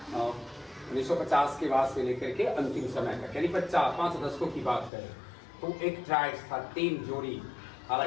1950 के बाद से लेकर के अंतिम समय तक, यानी 5 दशकों की बात करें, तो एक ट्राइब्स था, 3 जोड़ी,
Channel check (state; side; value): drops out; right; at 4.9 s